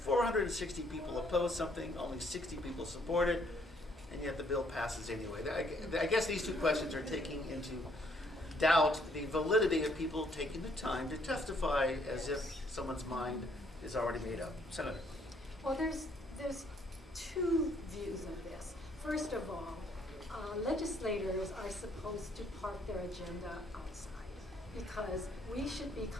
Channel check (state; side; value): normal; both; correlation 0.67